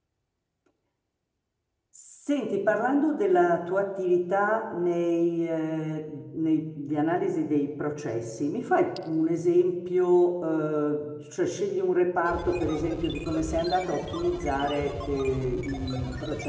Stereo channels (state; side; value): identical; both; correlation 1.00